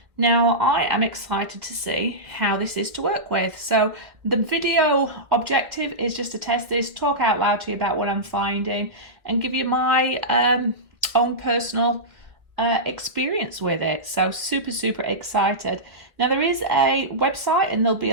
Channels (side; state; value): left; late; 1.5 ms